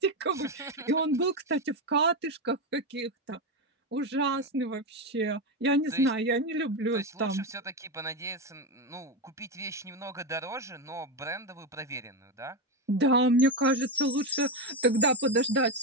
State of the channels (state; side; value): normal; both; correlation 0.11